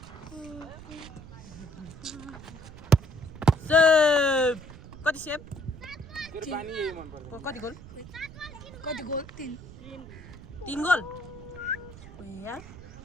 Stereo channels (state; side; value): noise; right; rumble, 16 dB below the sound